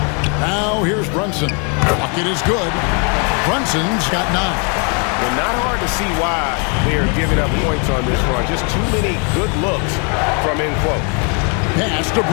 Now, here's Brunson. Bucket is good. Brunson's got 9. Well, not hard to see why they are giving up points on this run. Just too many good looks from in close. Pass to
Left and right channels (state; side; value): quieter; right; 36.6 dB